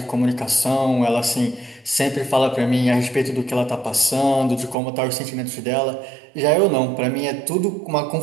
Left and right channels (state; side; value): drops out; left; at 4.8 s